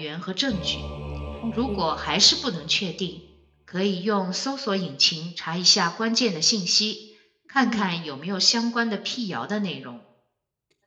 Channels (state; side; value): identical; both; correlation 1.00